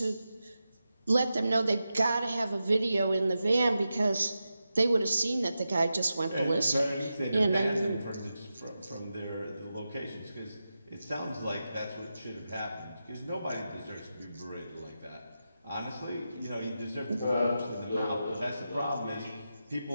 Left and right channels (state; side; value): inverted; both; correlation -0.90